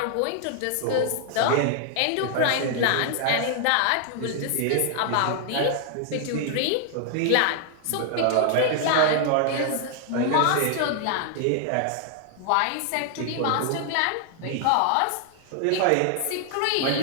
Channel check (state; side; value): different; both; correlation 0.00